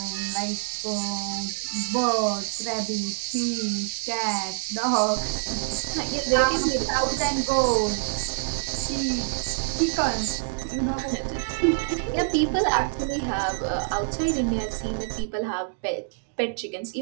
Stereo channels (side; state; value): left; silent; digital silence